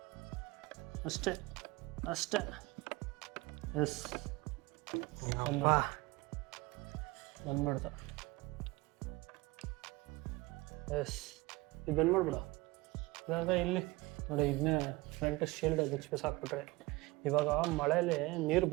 ಅಷ್ಟೇ. ಎಸ್ ಬಂದ್ಬಿಡ್ತ. ಎಸ್ ಇದು ಬಂದ್ ಮಾಡ್ಬಿಡ. ಇಲ್ಲಾಂದ್ರೆ ಇಲ್ಲಿ ನೋಡಿ, ಇದನ್ನೇ ಫ್ರಂಟ್ ಶೀಲ್ಡ್ ಬಿಚ್ಚಿಸ್ ಹಾಕ್ಬಿಟ್ರೆ, ಇವಾಗ ಮಳೆಯಲ್ಲಿ ನೀರು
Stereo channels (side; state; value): left; quieter; 21.7 dB